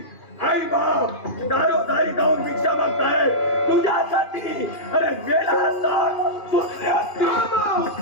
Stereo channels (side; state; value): right; late; 2.4 ms